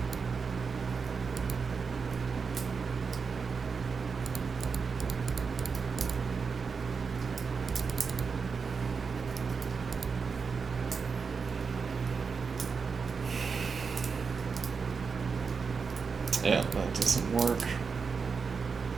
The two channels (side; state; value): left; quieter; 5.3 dB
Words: Yeah, that doesn't work.